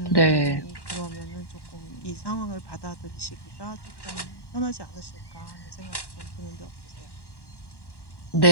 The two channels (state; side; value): late; right; 1.1 ms